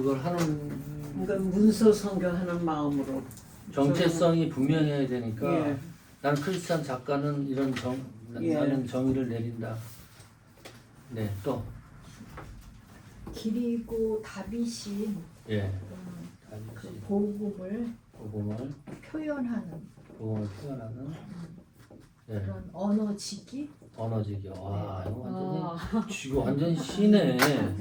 하는 그러니까 문서 성경하는 마음으로 정체성이 분명해야 되니까 예. 나는 크리스찬 작가는 이런 예. 나는 정의를 내린다. 네, 또 그리고 다윗이 예. 그 복음을 복음을 표현하는 표현하는 예. 그런 언어지기. 언어지기. 와, 이거 완전 시네.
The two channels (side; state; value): both; identical; correlation 1.00